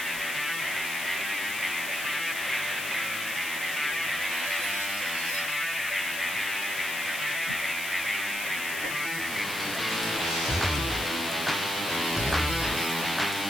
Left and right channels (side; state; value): left; noise; hiss, 7 dB below the sound